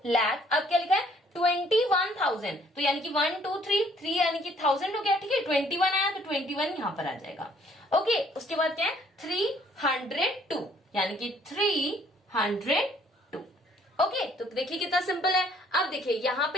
लाख अब क्या लिखा है 21,000। तो यानी कि 1 2 3 यानी कि 1000 हो गया। ठीक है 21 आया तो 21 यहाँ पर आ जाएगा। ओके उसके बाद क्या है 302 यानी कि 302। ओके तो देखिए कितना सिंपल है। अब देखिए यहाँ पे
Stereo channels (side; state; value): both; normal; correlation 0.62